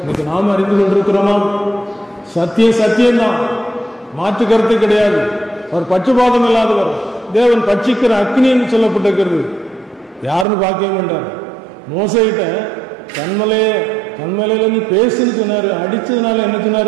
இன்னைக்கு நாம் அறிந்து கொண்டிருக்கிறோமா? சத்தியம் சத்தியம்தான், மாற்று கருத்து கிடையாது. அவர் பட்சபாதம் இல்லாதவர், தேவன் பட்சிக்கிற அக்னி என்று சொல்லப்பட்டிருக்கிறது. யாருன்னு பார்க்கவே மாட்டார். மோசைகிட்ட கண்மலையில நீ பேசுன்னு சொன்னாரு. அடிச்சதுனால என்ன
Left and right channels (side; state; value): left; drops out; at 10.5 s